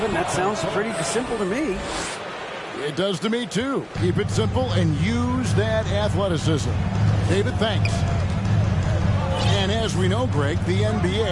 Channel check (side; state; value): both; identical; correlation 1.00